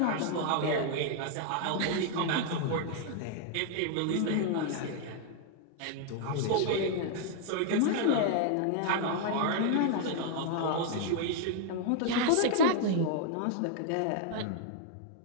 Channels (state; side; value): different; both; correlation -0.01